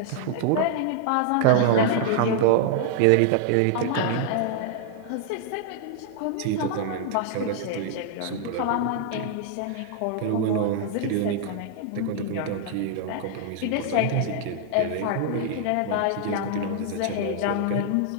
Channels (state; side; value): different; both; correlation -0.01